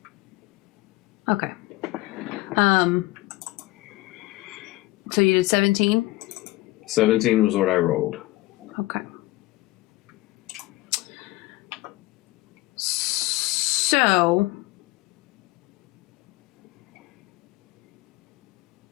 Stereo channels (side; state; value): right; quieter; 19.7 dB